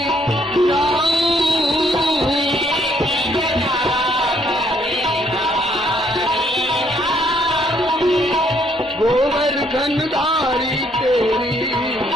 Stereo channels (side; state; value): both; normal; correlation 0.68